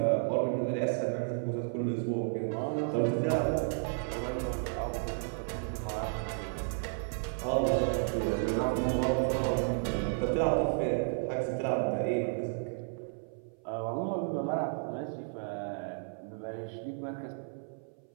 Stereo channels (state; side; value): silent; left; 56 dB below the other